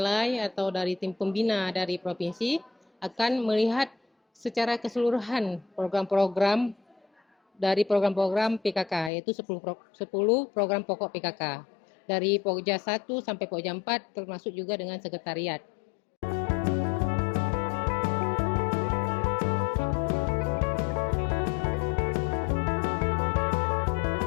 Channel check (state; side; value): drops out; right; at 9.1 s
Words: atau dari tim pembina dari provinsi akan melihat secara keseluruhan program-program dari program-program PKK, yaitu 10 program pokok PKK. Dari Pokja 1 sampai Pokja 4, termasuk juga dengan sekretariat.